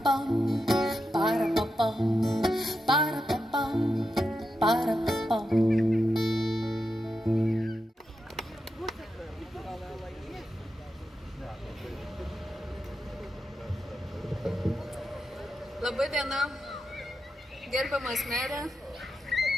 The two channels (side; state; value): both; normal; correlation 0.87